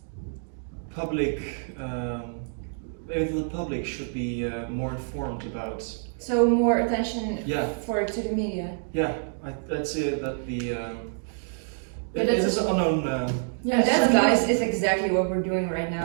public. Maybe the public should be more informed about. So more attention to the media. Yeah, I'd say that it is unknown. That, guys, is exactly what we're doing right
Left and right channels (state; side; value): silent; left; digital silence